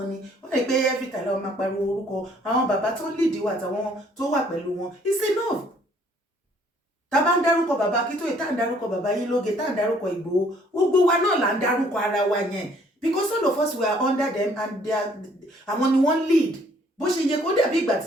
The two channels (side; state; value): both; normal; correlation 0.62